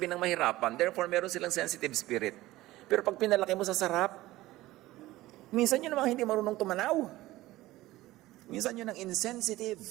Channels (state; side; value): quieter; left; 17.3 dB